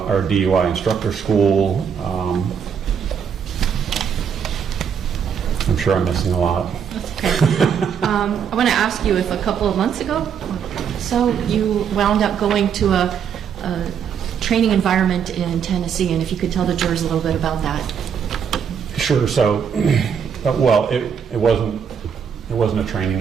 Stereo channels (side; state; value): left; quieter; 7.4 dB